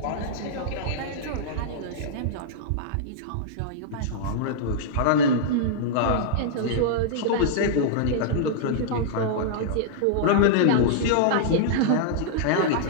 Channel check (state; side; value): different; both; correlation -0.02